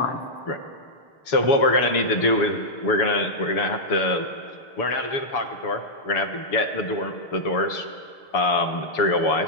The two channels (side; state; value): right; late; 7.0 ms